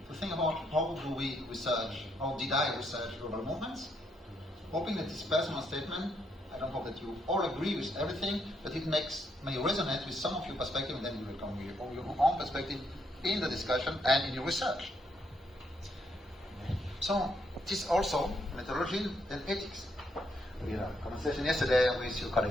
to think about how do we research, how did I research global movements, hoping that this personal statement, I don't hope that you all agree with everything, but it may resonate with some of your perspective, and then you will come with your own perspective in the discussion and in your research. So, this also methodology and ethics. We had a conversation yesterday with your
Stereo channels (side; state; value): both; normal; correlation 0.75